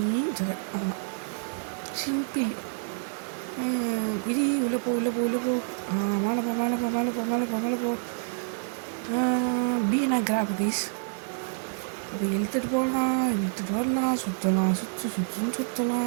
ஆமாம், சிம்பிள். விதி உள்ளே போ மேலே போ. பீனா கிராப் கைஸ். இப்போ இழுத்துட்டு போகலாம், இழுத்துட்டு வரலாம், சுற்றலாம்,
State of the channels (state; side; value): silent; left; digital silence